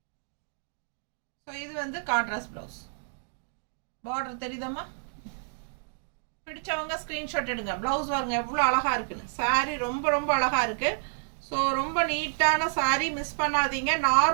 ஸோ இது வந்து கான்ட்ராஸ்ட் பிளவுஸ். பார்டர் தெரியுதாம்மா. பிடிச்சவங்க ஸ்க்ரீன்ஷாட் எடுங்க. பிளவுஸ் பாருங்க எவ்வளோ அழகாக இருக்குன்னு. சாரீ ரொம்ப ரொம்ப அழகாக இருக்குது. ஸோ ரொம்ப நீட்டான சாரீ, மிஸ் பண்ணாதீங்க.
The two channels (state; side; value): silent; left; digital silence